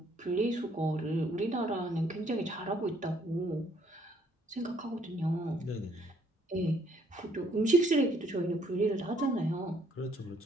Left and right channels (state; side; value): normal; both; correlation 0.66